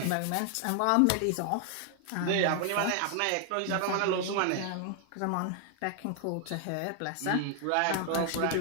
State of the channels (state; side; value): different; both; correlation 0.00